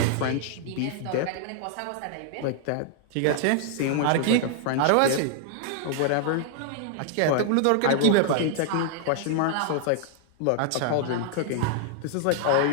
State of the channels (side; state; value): both; different; correlation 0.00